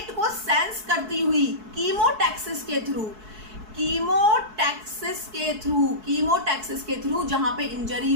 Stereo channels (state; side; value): late; left; 4.7 ms